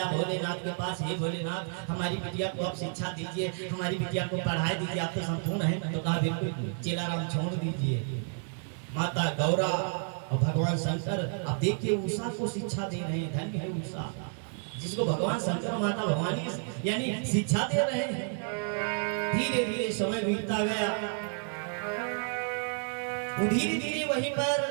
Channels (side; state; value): left; silent; 57 dB below the other